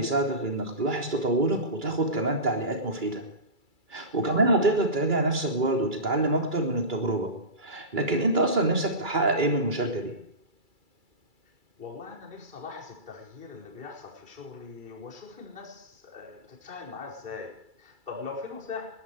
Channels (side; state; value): left; late; 2.3 ms